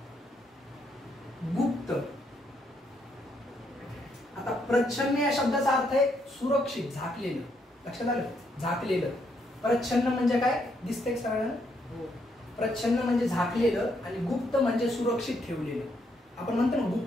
गुप्त. आता प्रच्छन्न या शब्दाचा अर्थ आहे सुरक्षित, झाकलेलं. लक्षात आलं? झाकलेलं. प्रच्छन्न म्हणजे काय, दिसतंय सगळ्यांना? प्रच्छन्न म्हणजे झाकलेलं, आणि गुप्त म्हणजे सुरक्षित ठेवलेलं. आपण म्हणतो ना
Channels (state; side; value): normal; both; correlation 0.75